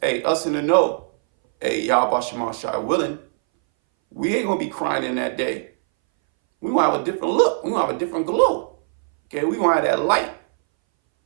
in the know, Yahweh Shema Shai willing, we ain't going to be crying in that day. We're going to have a different look. We're going to have a different glow. Okay? We're going to have that light.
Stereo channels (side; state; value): left; silent; 62 dB below the other